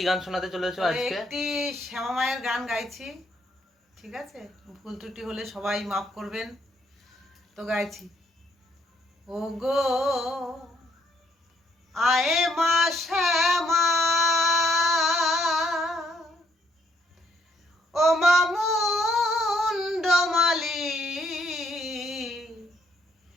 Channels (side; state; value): both; normal; correlation 0.71